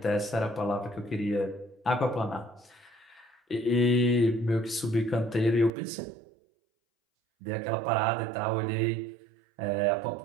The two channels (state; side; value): drops out; left; at 5.7 s